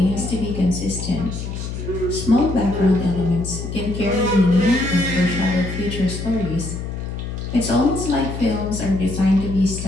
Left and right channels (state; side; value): noise; left; hum, 6 dB below the sound